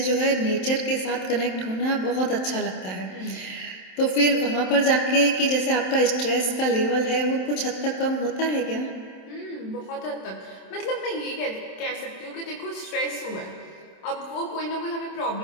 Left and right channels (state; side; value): late; right; 27 ms